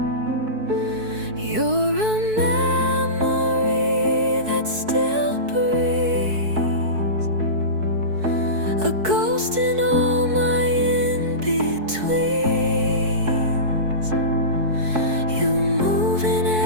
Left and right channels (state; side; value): late; left; 4.6 ms